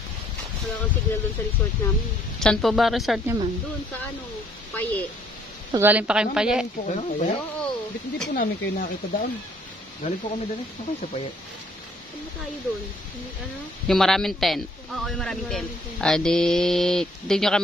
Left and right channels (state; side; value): normal; both; correlation 0.63